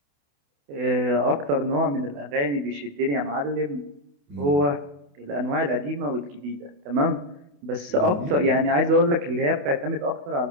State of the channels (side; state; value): left; late; 28 ms